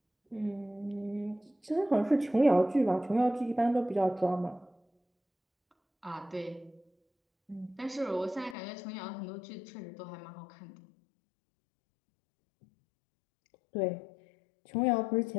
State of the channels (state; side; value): drops out; right; at 8.6 s